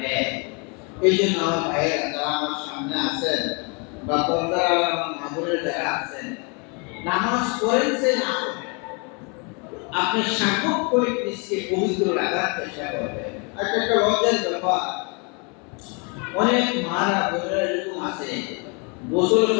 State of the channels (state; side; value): quieter; right; 33.5 dB